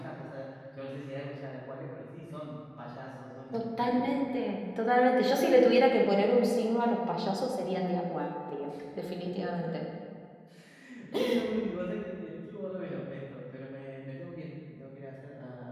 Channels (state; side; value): identical; both; correlation 1.00